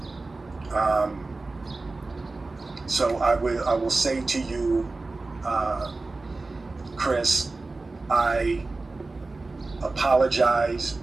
So I will say to you, Chris, I apologize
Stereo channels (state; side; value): quieter; left; 3.4 dB